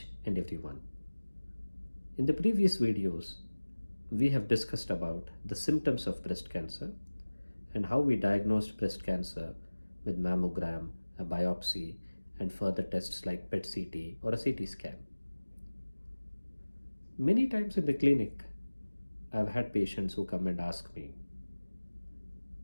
and everyone. In the previous videos, we have discussed about the symptoms of breast cancer and how we diagnosed breast cancer with mammogram, a biopsy, and further tests like PET-CT or a CT scan. Many times in the clinic, I've had patients who come and ask me,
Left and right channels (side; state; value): both; inverted; correlation -1.00